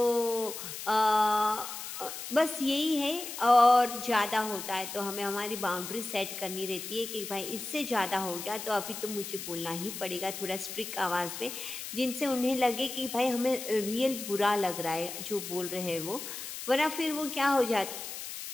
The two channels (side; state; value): left; noise; hiss, 8 dB below the sound